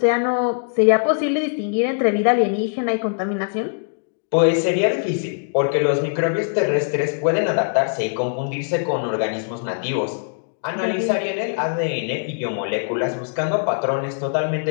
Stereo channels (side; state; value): right; silent; digital silence